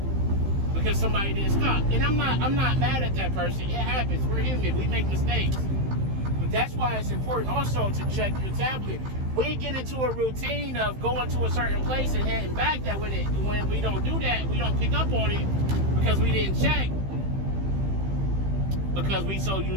because somebody didn't stop. And I'm not mad at that person. It happens. We're human. We make mistakes. But that's why it's important also to check your tablet. We get into a routine of going to a certain place and heading back, that when we don't do that, we don't pick up on it because we didn't check. Because we so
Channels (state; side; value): late; left; 15 ms